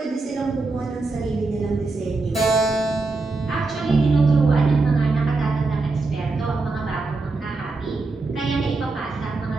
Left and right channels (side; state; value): left; quieter; 3.6 dB